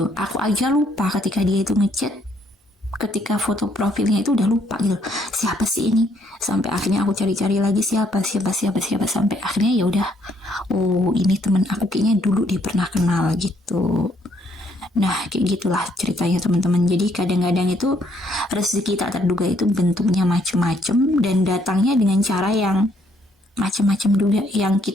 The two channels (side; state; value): both; normal; correlation 0.69